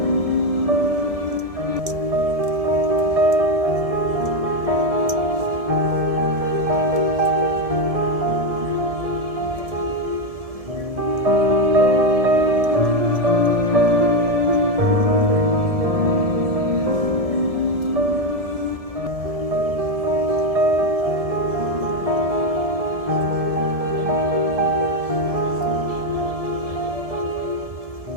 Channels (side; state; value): left; late; 1.7 ms